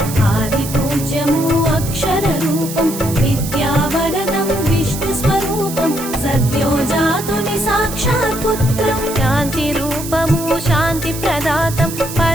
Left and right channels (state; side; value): noise; right; hiss, 10 dB below the sound